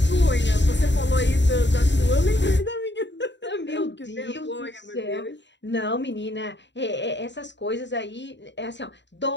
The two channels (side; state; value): right; late; 0.52 ms